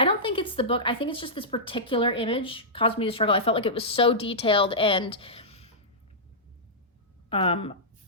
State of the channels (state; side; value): normal; both; correlation -0.14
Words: think it's the book. I think it's just this particular image caused me to struggle. I felt like it was so detailed and,